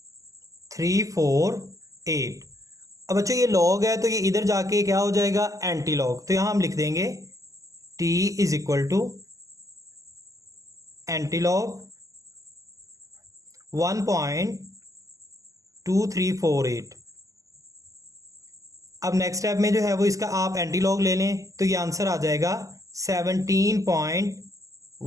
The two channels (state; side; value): late; left; 0.16 ms